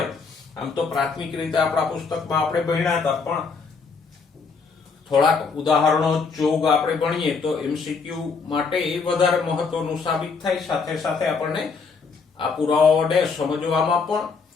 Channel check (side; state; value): right; quieter; 5.0 dB